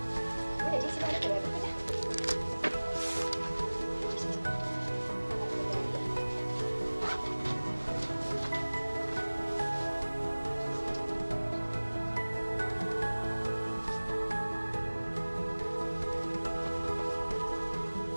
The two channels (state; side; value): inverted; both; correlation -1.00